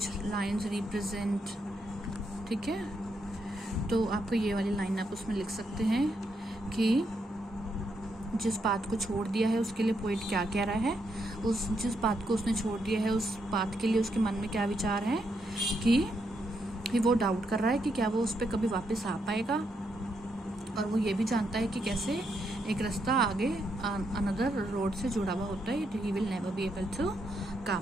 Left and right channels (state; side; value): normal; both; correlation 0.79